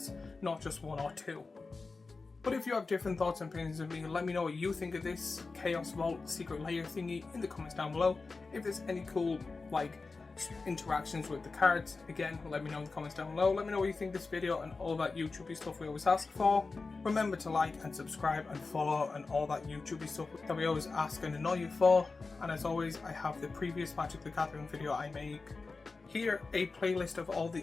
not just 1 or 2. But if you have different thoughts and opinions of me, let me know what you think of this Chaos Vault Secret Lair thingy in the comments down below. If there's any cool interactions with the cards, again, let me know in the comments down below. Let me know what you think of this video and all that YouTubey stuff we always ask for. Remember to like and subscribe and follow and all that YouTubey stuff that we always ask and annoy you for. And as always, I have the previous Magic the Gathering video I make here, a playlist of all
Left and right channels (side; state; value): right; quieter; 4.0 dB